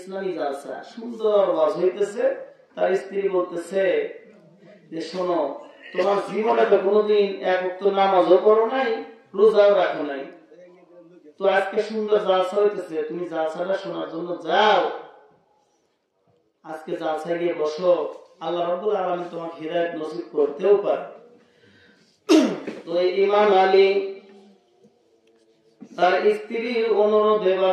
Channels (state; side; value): identical; both; correlation 1.00